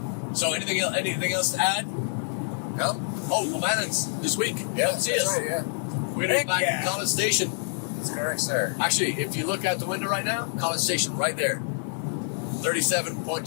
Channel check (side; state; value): right; silent; digital silence